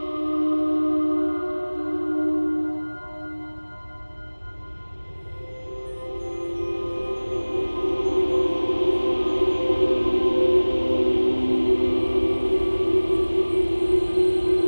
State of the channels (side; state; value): both; inverted; correlation -1.00